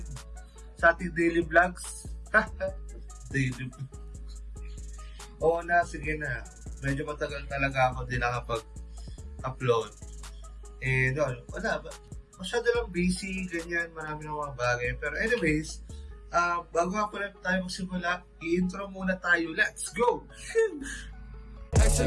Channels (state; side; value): identical; both; correlation 1.00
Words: sa ating daily vlogs. Daily Oo na, sige na. Medyo matagal talaga ako din nakapag-upload. And wala, masyado lang busy, ganyan, marami ng mga bagay. Pero anyways, bago nga pala tayo magsimula, i-intro muna tayo. Let's go!